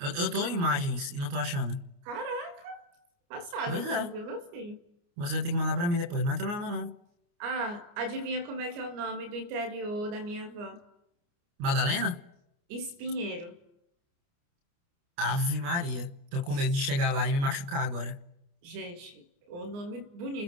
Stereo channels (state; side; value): late; left; 29 ms